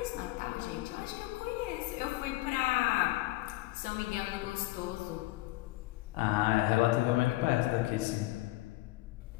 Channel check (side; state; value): right; quieter; 18.7 dB